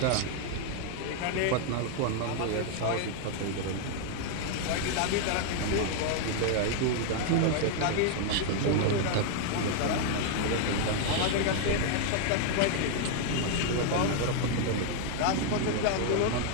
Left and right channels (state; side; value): different; both; correlation 0.00